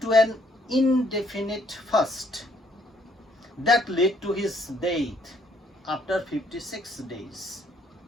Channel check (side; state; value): both; normal; correlation 0.67